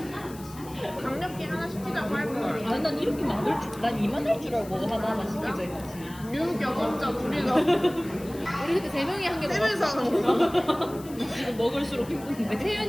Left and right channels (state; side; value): noise; left; hiss, 19 dB below the sound